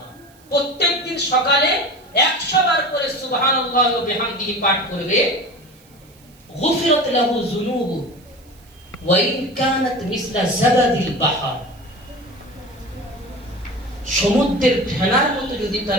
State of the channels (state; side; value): noise; right; hiss, 28 dB below the sound